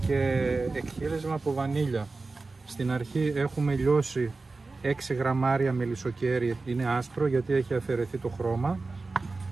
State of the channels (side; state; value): left; quieter; 3.7 dB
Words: και εκχύλισμα από βανίλια. Στην αρχή έχουμε λιώσει 6 γραμμάρια μελισσοκέρι, είναι άσπρο γιατί έχει αφαιρεθεί το χρώμα,